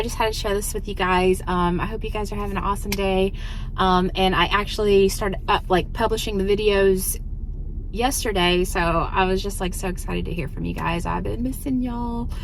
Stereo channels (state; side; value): identical; both; correlation 1.00